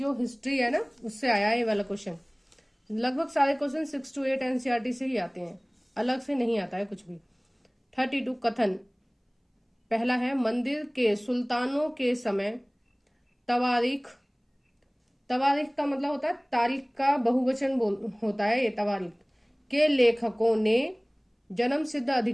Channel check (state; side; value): identical; both; correlation 1.00